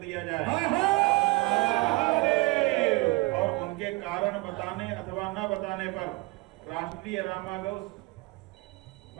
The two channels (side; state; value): left; quieter; 23.0 dB